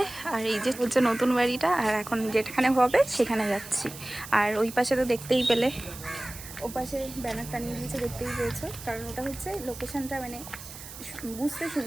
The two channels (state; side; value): noise; right; hiss, 14 dB below the sound